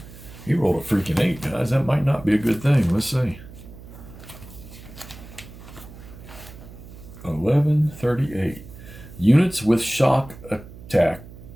He rolled a freaking 8, guys. That might not be a good thing. Let's see. 1138. Units with shock attackers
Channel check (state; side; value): noise; right; hum, 17 dB below the sound